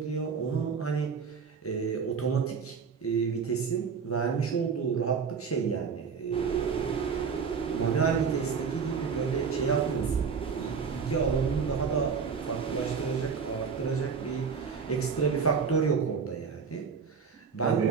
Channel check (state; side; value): quieter; left; 5.9 dB